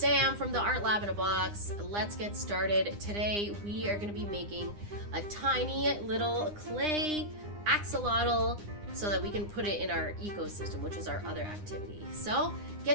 from the Art Lab in a Box. Let's get started. Today we are going to be making a tiny little clay axolotl so that we can put it in our ecosystem, which is our other activity. So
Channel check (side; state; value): left; late; 9.8 ms